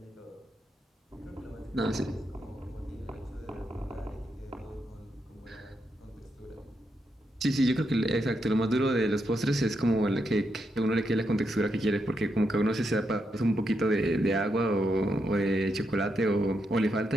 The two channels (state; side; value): normal; both; correlation 0.82